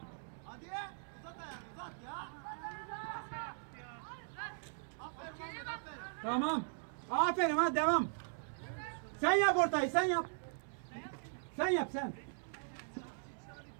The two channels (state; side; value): silent; left; digital silence